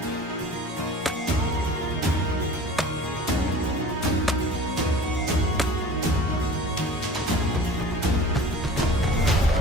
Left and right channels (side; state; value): both; normal; correlation 0.42